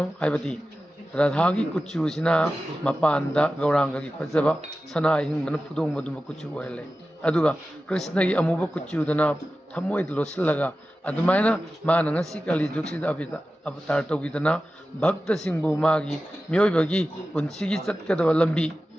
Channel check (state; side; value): normal; both; correlation 0.94